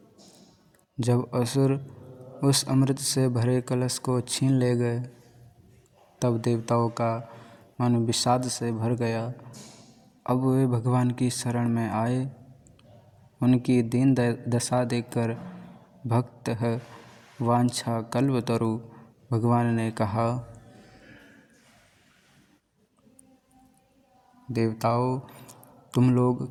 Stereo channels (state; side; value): identical; both; correlation 1.00